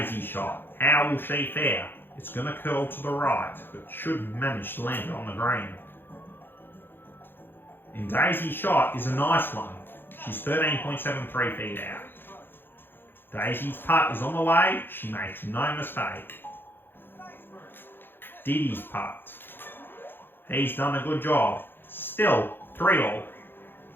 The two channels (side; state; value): right; late; 0.10 ms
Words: shot, how will she fare? It's going to curl to the right, but should manage to land it on the green. And Daisy's shot is a nice one. She's 13.73 feet out. Daisy's putt is on the way. She makes no mistake. Diddy's putt. He's done a good job. Still 3-all.